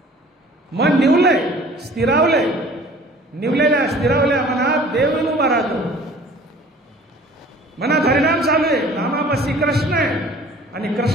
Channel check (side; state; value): both; normal; correlation 0.49